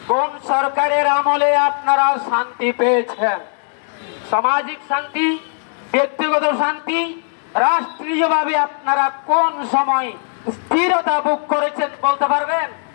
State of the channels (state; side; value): silent; right; digital silence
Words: কোন সরকারের আমলে আপনারা শান্তি পেয়েছেন? সামাজিক শান্তি, ব্যক্তিগত শান্তি, রাষ্ট্রীয়ভাবে আপনারা কোন সময় স্থিরতা ভোগ করেছেন বলতে পারবেন?